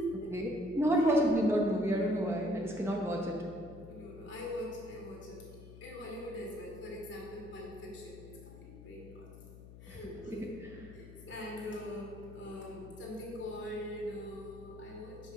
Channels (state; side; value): noise; left; hum, 15 dB below the sound